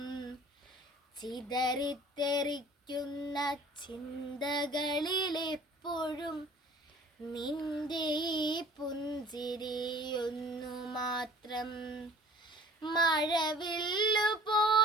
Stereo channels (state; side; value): normal; both; correlation 0.48